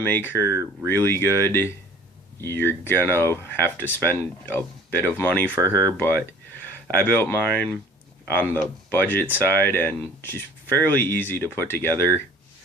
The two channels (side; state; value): both; normal; correlation 0.50